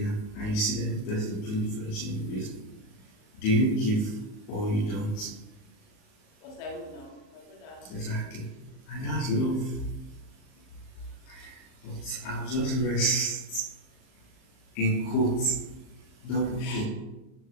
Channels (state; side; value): late; right; 38 ms